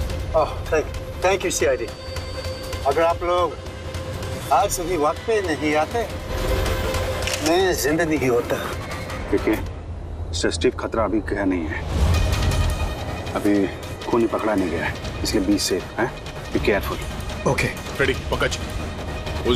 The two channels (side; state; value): both; identical; correlation 1.00